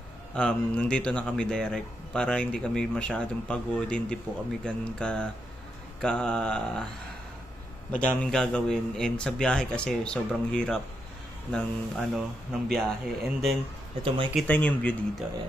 nandito na kami direct para hindi kami masyadong pagod, hindi po kami ganun ka madaming gagawin, and sa biyahe kasi sobrang hirap ng biyahe. And then ito, makikita niyo yung view dito.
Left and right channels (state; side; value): normal; both; correlation 0.82